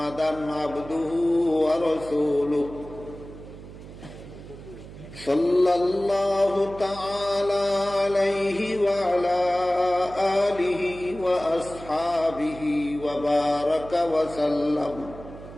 عبده ورسوله صلى الله تعالى عليه وعلى آله وأصحابه وبارك وسلم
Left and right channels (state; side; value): noise; right; hum, 15 dB below the sound